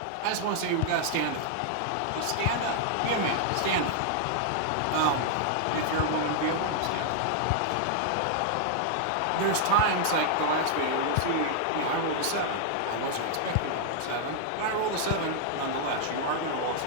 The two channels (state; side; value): different; both; correlation -0.01